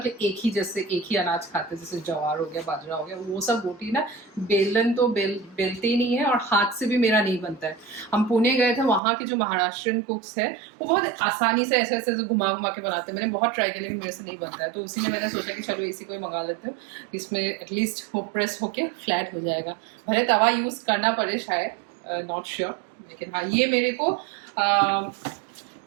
एक ही अनाज खाते हैं, जैसे ज्वार हो गया, बाजरा हो गया, वो सब रोटी ना बेलन तो बेलते ही नहीं है, और हाथ से भी मेरा नहीं बनता है। हम पुणे गए थे, वहाँ के जो महाराष्ट्रियन कुक्स है वो बहुत आसानी से ऐसे ऐसे घुमा घुमा के बनाते हैं। मैंने बहुत ट्राई किया लेकिन मेरे से नहीं बनता है, तो उसी में मैंने सोचा कि चलो इसी को ही मंगा लेते हैं, इसमें एटलीस्ट वो प्रेस होके फ्लैट हो जाएगा। भले तवा यूज करना पड़े शायद, नॉट श्योर, लेकिन हाँ ये मेरे को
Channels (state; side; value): drops out; left; at 9.0 s